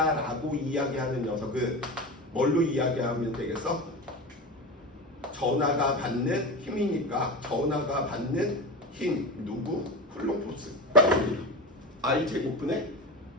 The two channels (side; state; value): both; normal; correlation 0.25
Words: 이야기하는 녀석은 뭘로 이야기하면 되겠어? 전하가 받는 힘이니까 전하가 받는 힘 누구? 쿨롱 포스 I 제곱분의